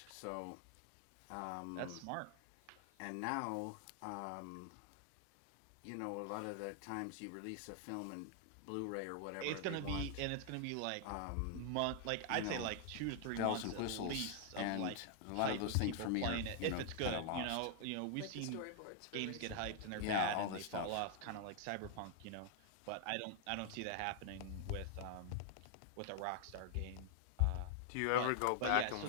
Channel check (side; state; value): both; different; correlation 0.00